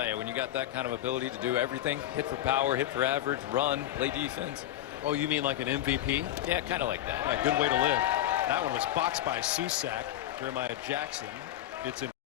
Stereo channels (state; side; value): quieter; right; 13.2 dB